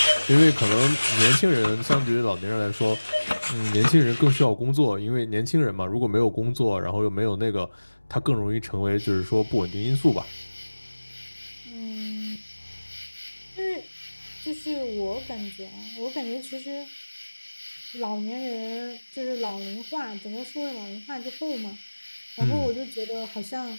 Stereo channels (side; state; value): both; inverted; correlation -1.00